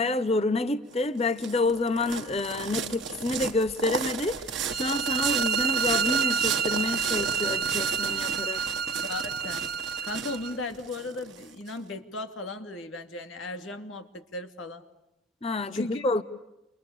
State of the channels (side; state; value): both; normal; correlation 0.43